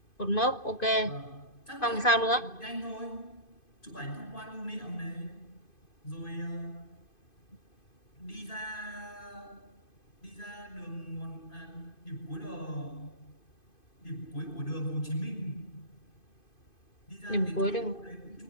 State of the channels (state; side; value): late; right; 2.5 ms